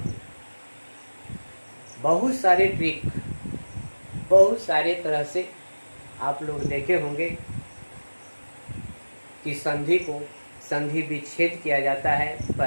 बहुत सारे ट्रिक, बहुत सारे तरह से आप लोग देखे होंगे कि संधि को संधि विच्छेद किया जाता है,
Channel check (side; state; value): both; inverted; correlation -1.00